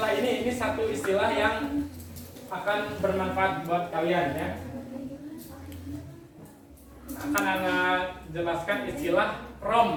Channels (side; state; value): both; identical; correlation 1.00